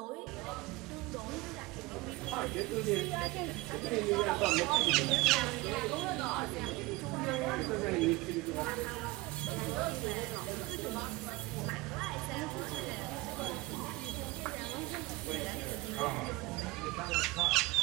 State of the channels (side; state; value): left; quieter; 20.9 dB